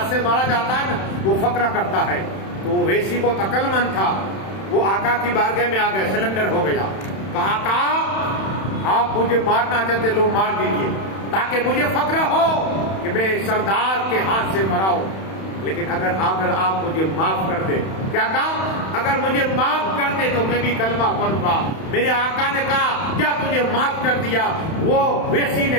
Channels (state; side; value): late; right; 31 ms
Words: سے مارا جاتا ہے نا وہ فقرہ کرتا ہے، تو وہ ویسی بہت عقل مند تھا، وہ آقا کی بارگاہ میں آ گئے، سلنڈر ہو گیا، کہا آقا آپ مجھے مارنا چاہتے لو مار دیجیے تاکہ مجھے فخر ہو کہ میں سردار کے ہاتھ سے مرا ہوں، لیکن اگر آپ مجھے معاف کر دے، کیا کہا؟ اگر مجھے معاف کر دے تو میں بھی کلمہ پڑھوں گا۔ میرے آقا نے کہا کیا تجھے معاف کر دیا؟ وہ ویسی نے